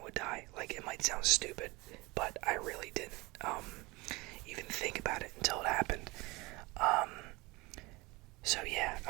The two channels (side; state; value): left; quieter; 23.6 dB